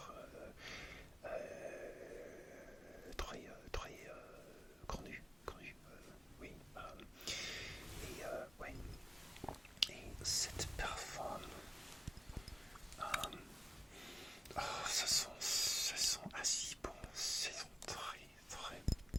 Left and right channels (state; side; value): normal; both; correlation 0.97